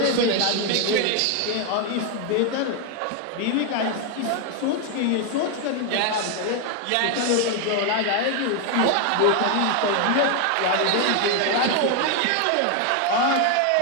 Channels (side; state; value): both; different; correlation 0.01